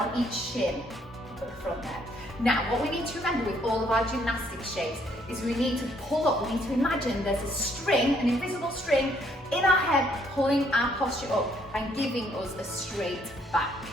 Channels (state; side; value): normal; both; correlation 0.68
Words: each shin at the front there. Now what we need to remember with all of our gymnastics shapes is we need to pull up, we need to imagine there's a string, an invisible string in our head pulling our posture up and giving us a straight back,